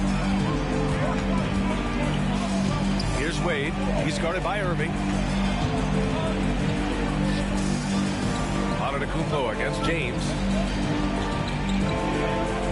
Here's Wade. He's guarded by Irving. Antetokounmpo against James.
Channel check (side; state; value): both; identical; correlation 1.00